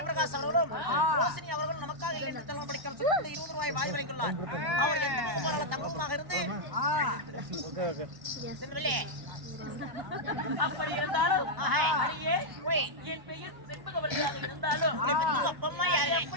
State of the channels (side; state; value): left; late; 1.0 ms